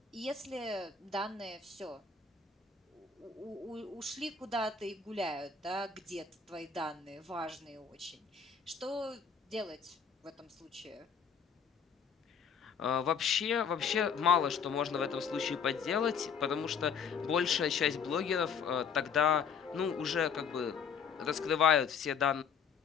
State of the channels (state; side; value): quieter; right; 6.4 dB